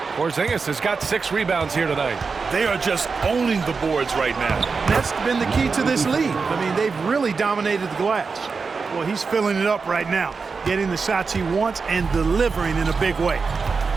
Porzingis has got 6 rebounds here tonight. They are just owning the boards right now. That's been the key to this lead. I mean, they've really dominated the glass. Well, he's filling it up right now, getting the shots he wants and delivering in a big way.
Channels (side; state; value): left; quieter; 4.8 dB